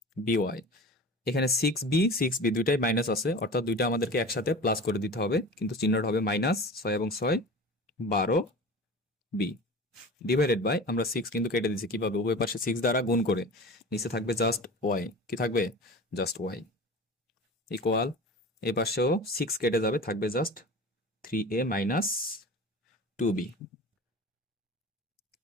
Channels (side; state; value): both; normal; correlation 0.35